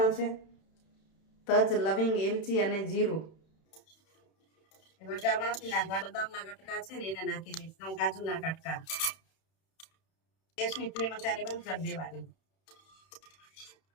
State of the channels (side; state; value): right; late; 31 ms